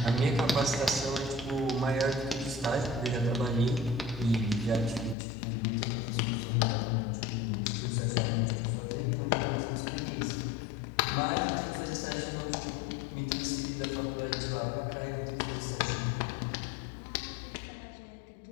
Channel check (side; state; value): right; drops out; at 5.2 s